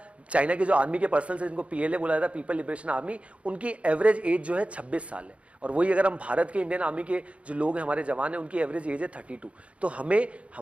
के जो आर्मी के पर्सन है जिनको पीएलए बोला जाता है, पीपल लिबरेशन आर्मी, उनकी एवरेज एज जो है 26 साल है। और वही अगर हम भारत के इंडियन आर्मी के जो लोग हैं, हमारे जवान हैं, उनकी एवरेज एज है 32। तो हमें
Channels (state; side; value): late; left; 0.063 ms